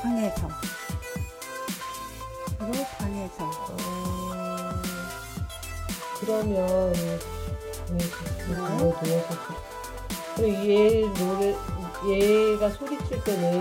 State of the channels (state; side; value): identical; both; correlation 1.00